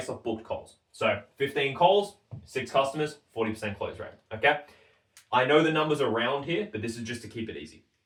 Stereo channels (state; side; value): identical; both; correlation 1.00